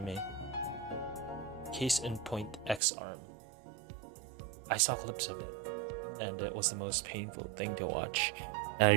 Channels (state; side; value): drops out; left; at 2.8 s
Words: Case in point, X-Arm. I saw clips of it, and it was the most painful thing to watch. And I